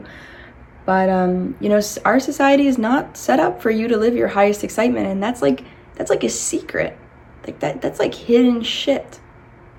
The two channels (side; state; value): both; identical; correlation 1.00